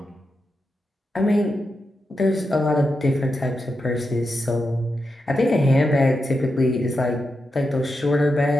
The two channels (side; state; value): both; normal; correlation 0.87